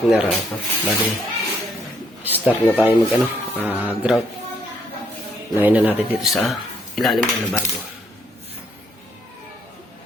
bali, start na tayo mag grout. Lain na natin dito sa ilalim ng lababo.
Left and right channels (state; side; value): normal; both; correlation 0.71